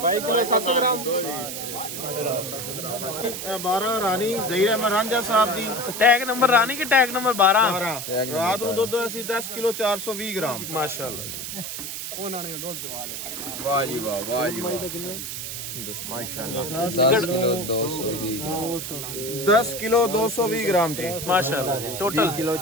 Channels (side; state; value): right; noise; hiss, 6 dB below the sound